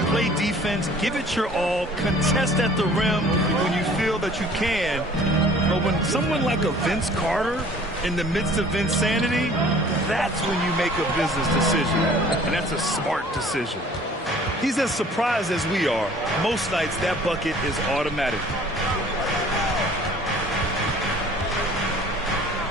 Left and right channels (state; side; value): normal; both; correlation 0.51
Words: play defense, give it your all, contest at the rim when you feel that you can. But when someone like a Vince Carter in the midst of insanity, that's when you make a business decision. And that's a smart decision. He's as surprised as we are. Most nights, that bucket is automatic.